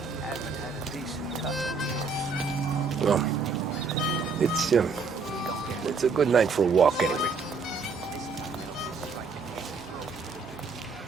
Well, it's a good night for a walk anyway.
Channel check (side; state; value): left; quieter; 4.6 dB